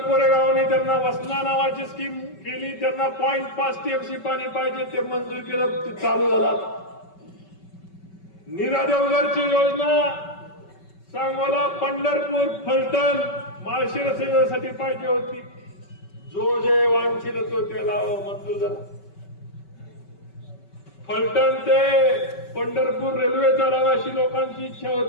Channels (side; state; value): right; late; 5.2 ms